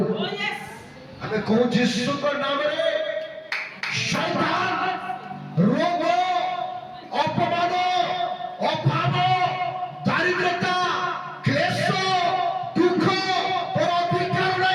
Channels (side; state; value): both; identical; correlation 1.00